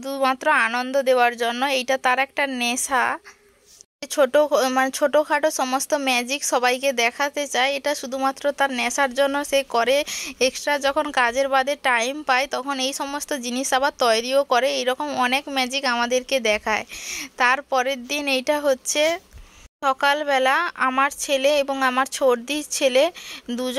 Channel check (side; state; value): both; identical; correlation 1.00